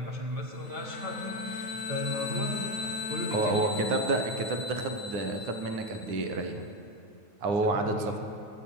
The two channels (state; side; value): late; left; 9.7 ms